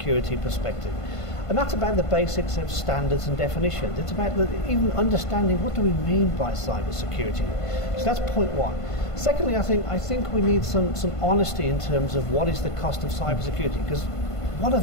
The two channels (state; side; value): late; right; 1.5 ms